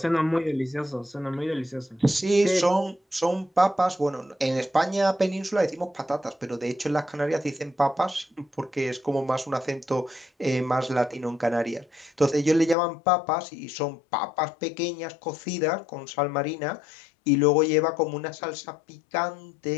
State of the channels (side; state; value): right; drops out; at 12.8 s